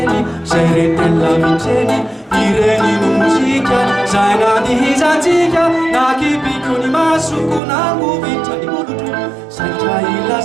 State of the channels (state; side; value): drops out; left; at 7.6 s